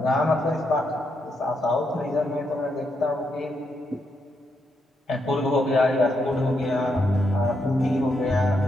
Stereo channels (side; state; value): both; normal; correlation 0.80